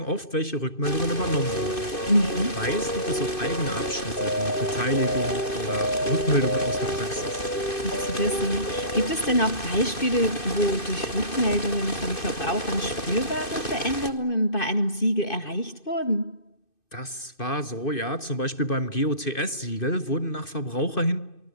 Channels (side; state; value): right; late; 2.5 ms